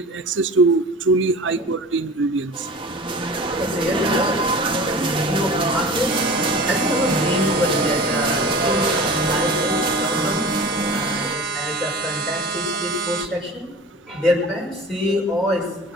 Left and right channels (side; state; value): both; normal; correlation 0.38